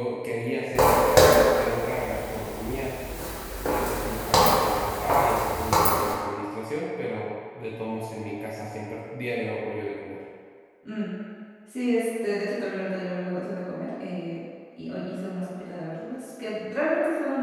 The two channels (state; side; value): identical; both; correlation 1.00